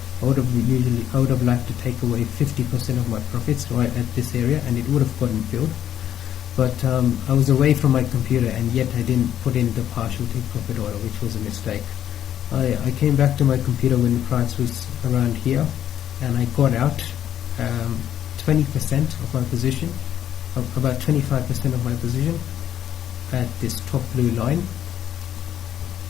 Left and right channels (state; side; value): quieter; right; 10.6 dB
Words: I would have liked to take away 50% of my profits right at this area, and it would have gotten filled. But I was away from my computer, and yet I didn't put in the partial take profit order, which was a mistake. I came back to my computer when the price was around here, and I got out 20% of my position, about 25% of my position at this top blue line.